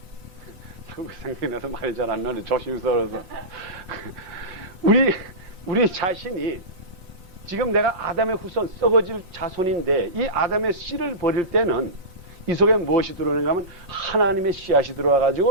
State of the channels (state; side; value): late; left; 5.6 ms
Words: 생각이 나서 말이 잘 안 나는데 조심스러워서 우리 자신이 지금 내가 아담의 후손 썩어질 자손인데 이 아담의 씨를 버릴 때는 이 속에 무엇이 들어오는가 하면 하나님의 씨앗이